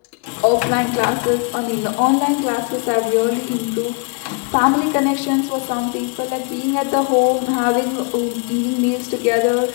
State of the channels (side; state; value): right; quieter; 35.9 dB